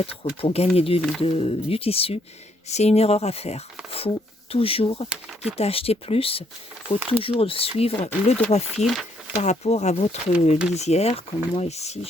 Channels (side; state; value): both; normal; correlation 0.71